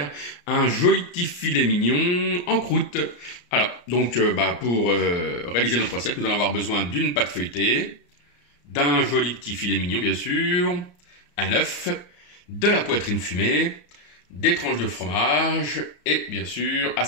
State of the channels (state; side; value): late; right; 34 ms